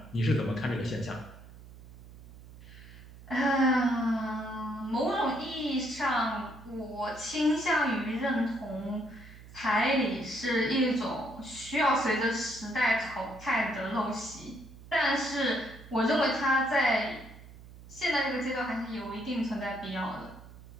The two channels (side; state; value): right; noise; hum, 18 dB below the sound